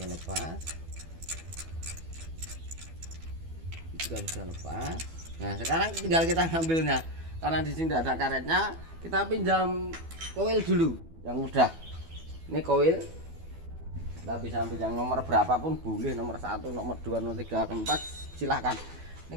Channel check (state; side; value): late; left; 12 ms